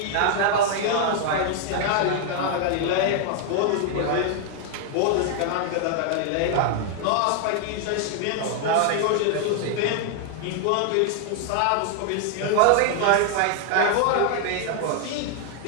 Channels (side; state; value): both; different; correlation 0.00